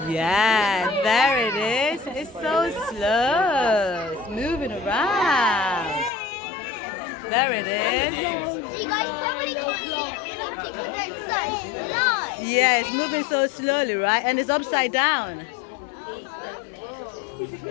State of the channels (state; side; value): drops out; right; at 6.1 s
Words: Yeah, there it is. It's so slow. It's moving around. There it is. You guys probably can't see it because it's so slow. Yeah, it's moving so slowly, right? And it's upside down.